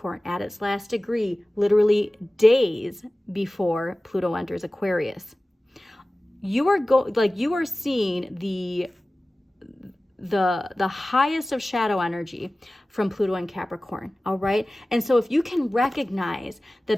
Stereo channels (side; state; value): both; normal; correlation 0.97